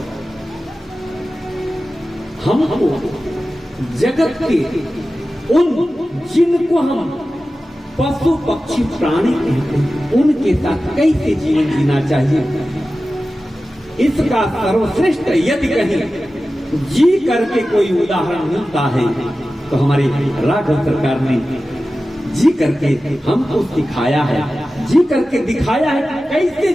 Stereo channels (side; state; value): both; normal; correlation 0.94